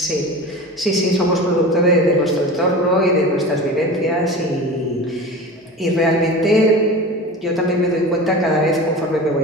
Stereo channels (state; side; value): normal; both; correlation 0.33